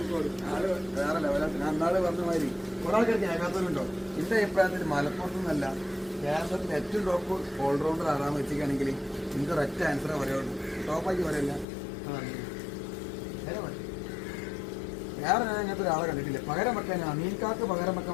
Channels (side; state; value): right; drops out; at 11.7 s